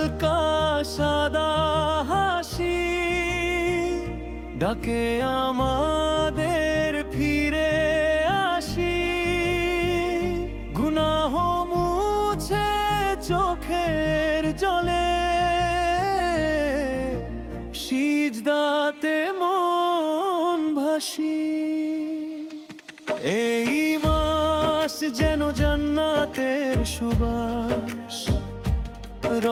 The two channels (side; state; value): both; identical; correlation 1.00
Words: সাদা হাসি ডাকে আমাদের ফিরে আসি। গুনাহ মুছে চোখের জলে, সিজদাতে মন ভাসি। এই মাস যেন জান্নাতের সুবাস,